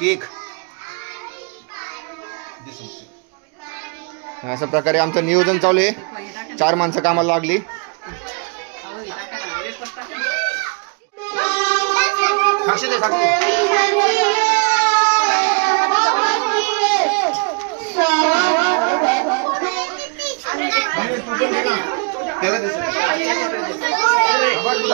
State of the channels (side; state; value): left; quieter; 35.5 dB